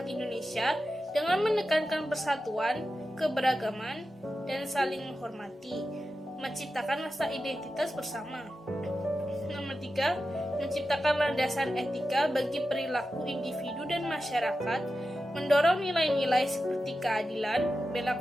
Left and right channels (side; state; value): both; normal; correlation 0.92